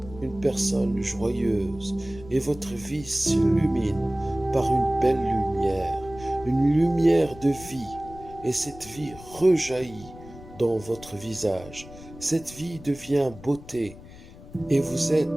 une personne joyeuse et votre vie s'illumine par une belle lumière, une lumière de vie, et cette vie rejaillit dans votre visage. Cette vie devient beauté et vous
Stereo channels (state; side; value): noise; left; rumble, 18 dB below the sound